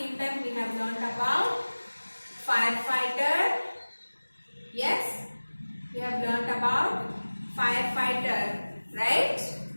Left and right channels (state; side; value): inverted; both; correlation -1.00